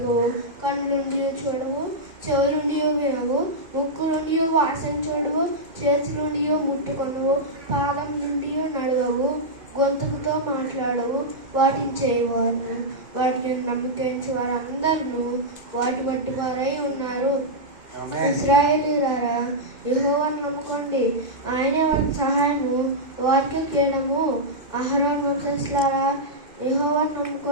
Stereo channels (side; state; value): left; late; 2.5 ms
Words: కన్ను నుండి చూడవు, చెవుల నుండి వినవు, ముక్కు నుండి వాసన చూడవు, చేతి నుండి ముట్టుకొనవు, పాదం నుండి నడవవు, గొంతుకుతో మాట్లాడవు. వాటిని చేయవారు, వాటిని నమ్మకించే వారందరూ వాటి బట్టి వారై ఉన్నారు. ఇశ్రాయేలీయులారా, యెహోవాను నమ్ముకోండి, ఆయనే వారికి సహాయము, వారికి కేడము. అహరోను వంశస్థులారా, యెహోవాను